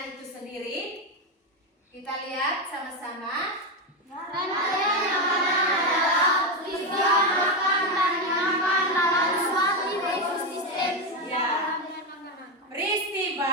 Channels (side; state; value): both; normal; correlation 0.10